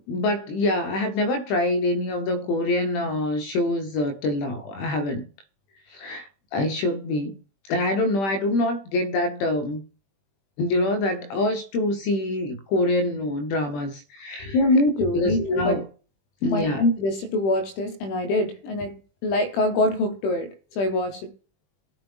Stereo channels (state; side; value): late; right; 21 ms